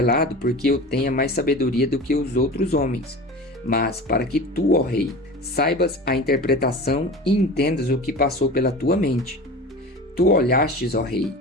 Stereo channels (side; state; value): both; normal; correlation 0.34